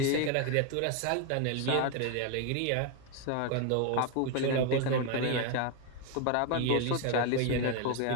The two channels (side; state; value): both; different; correlation 0.01